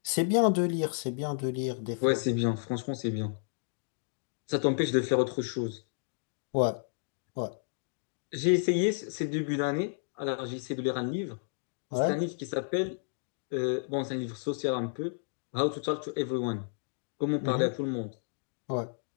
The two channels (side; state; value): right; silent; digital silence